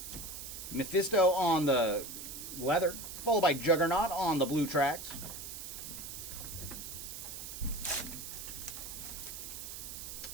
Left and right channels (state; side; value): noise; right; hiss, 9 dB below the sound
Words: Mephisto on the leather, followed by Juggernaut on the blue tracks.